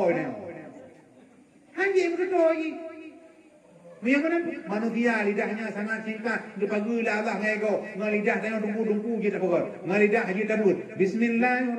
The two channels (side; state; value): both; identical; correlation 1.00